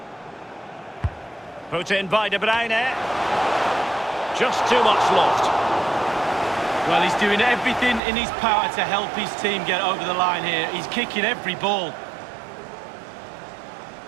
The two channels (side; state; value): left; drops out; at 8.0 s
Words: Put in by De Bruyne. Just too much loft. Well, he's doing everything in his power to help his team get over the line here. He's kicking every ball.